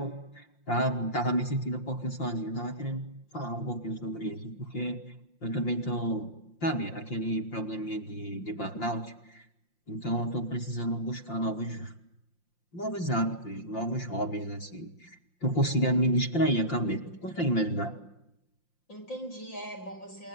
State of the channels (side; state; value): right; late; 5.7 ms